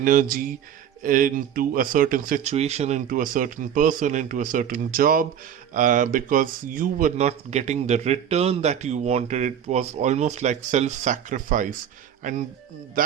into a certain situation, into a certain person, into a certain job, because you were not getting the return that you wanted. It was almost like self-sacrifice, and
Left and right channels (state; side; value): quieter; left; 9.2 dB